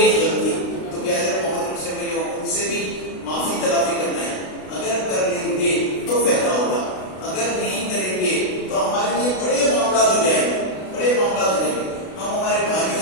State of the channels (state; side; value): late; right; 32 ms